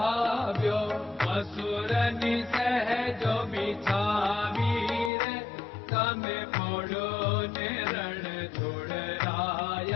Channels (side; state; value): right; drops out; at 5.1 s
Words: મસૂરની સહેજો બિછાવી રે તમે પોડો ને રણ